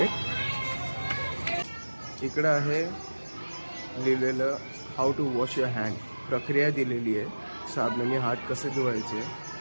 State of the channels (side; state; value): both; inverted; correlation -1.00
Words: इकडं आहे लिहिलेलं how to wash your hand. प्रक्रिया दिलेली आहे, साबणाने हात कसे धुवायचे.